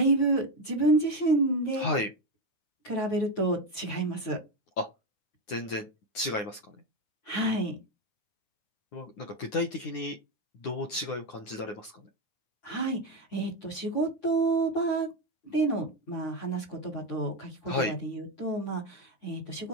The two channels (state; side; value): late; right; 9.6 ms